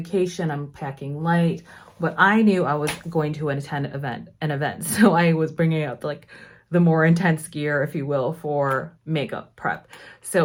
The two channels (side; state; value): both; identical; correlation 1.00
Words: I'm packing light, but I knew I was going to attend an event. So I was bringing out like the more intense gear, if you will, for makeup prep.